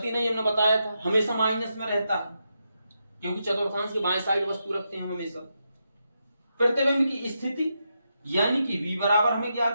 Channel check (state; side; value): inverted; both; correlation -0.85